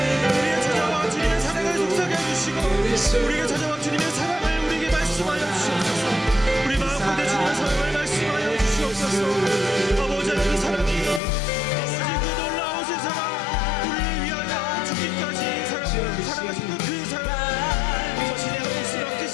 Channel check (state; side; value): drops out; right; at 11.2 s